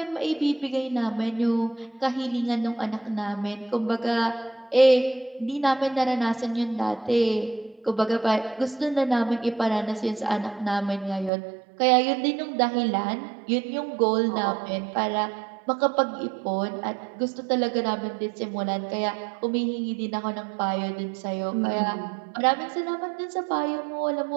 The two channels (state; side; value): drops out; left; at 11.3 s